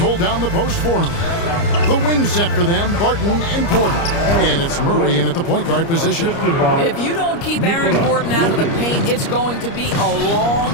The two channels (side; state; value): right; late; 29 ms